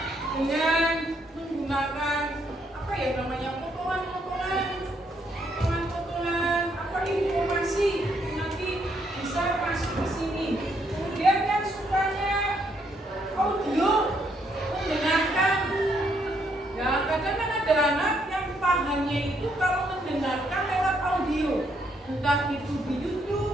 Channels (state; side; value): normal; both; correlation 0.73